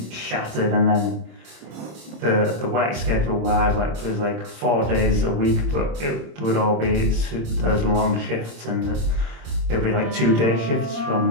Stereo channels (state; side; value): late; left; 26 ms